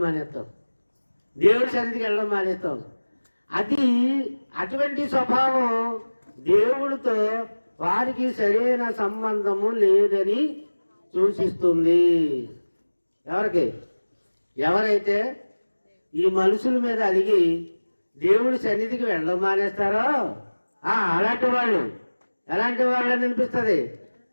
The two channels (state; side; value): inverted; both; correlation -1.00